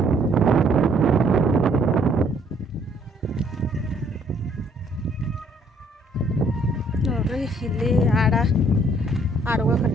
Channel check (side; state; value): both; normal; correlation 0.63